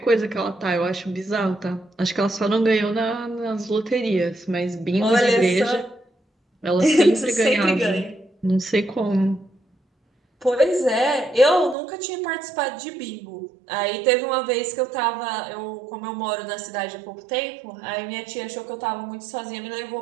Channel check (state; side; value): drops out; left; at 11.8 s